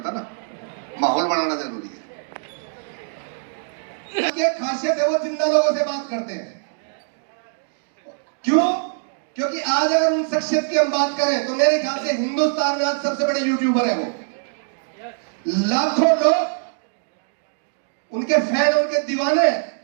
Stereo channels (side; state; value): left; silent; digital silence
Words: ना, माहौल बनाना जरूरी है। ये खासियत है, वो जिंदा लोगों से बात करते हैं। क्यों? क्योंकि आज अगर उन शख्सियत की हम बात करें तो मेरे ख्याल से हिंदुस्तान में आज सबसे बड़े यूट्यूबर है वो। लाखों लोग उनके फैन, उनके दीवाने।